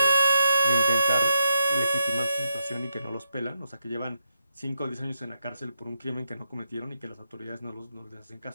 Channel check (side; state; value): both; inverted; correlation -0.83